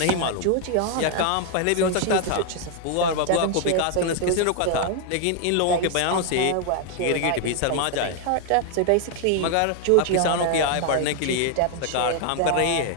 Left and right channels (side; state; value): both; different; correlation 0.00